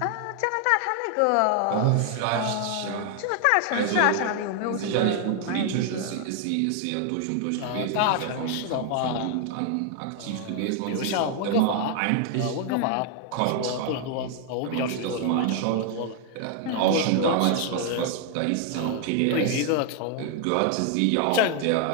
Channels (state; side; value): different; both; correlation 0.00